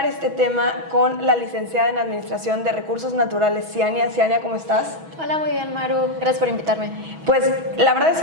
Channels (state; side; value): late; left; 6.2 ms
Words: este tema con la licenciada en Administración de Recursos Naturales, Ciania. Ciania, ¿cómo estás? Hola, muy bien, Maru. Gracias por invitarme. Pues la verdad es